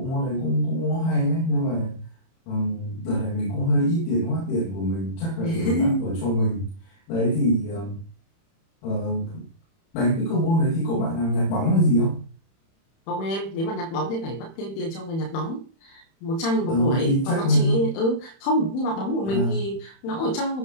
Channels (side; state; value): right; late; 31 ms